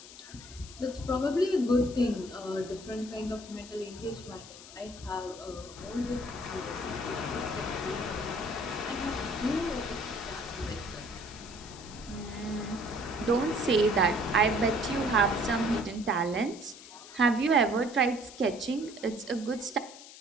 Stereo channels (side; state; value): left; noise; hiss, 16 dB below the sound